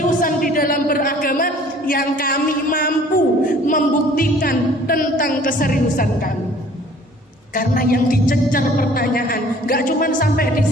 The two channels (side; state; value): both; normal; correlation 0.53